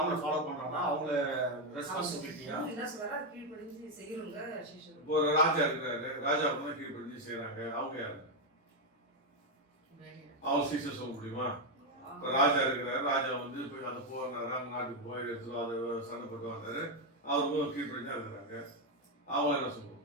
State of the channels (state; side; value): normal; both; correlation 0.04